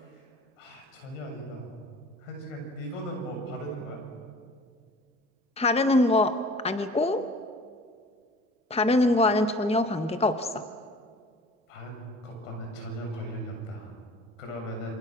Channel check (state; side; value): normal; both; correlation 0.46